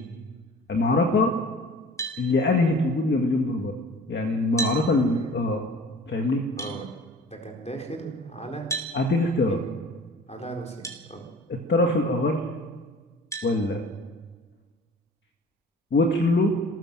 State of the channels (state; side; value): normal; both; correlation 0.45